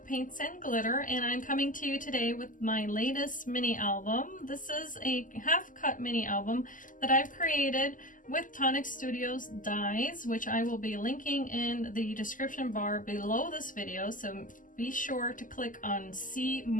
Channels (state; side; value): late; right; 0.38 ms